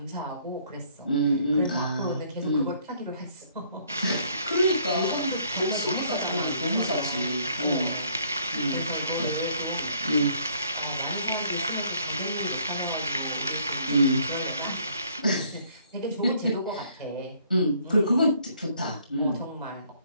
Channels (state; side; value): inverted; both; correlation -0.63